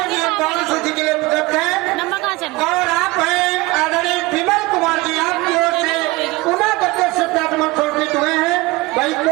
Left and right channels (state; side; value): quieter; left; 22.2 dB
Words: सूची के लिए उपलब्ध है। और आप हैं आदरणीय विमल कुमार जी, आपकी ओर से पुनः 10 श्रद्धासुमन समर्पित हुए हैं भाई।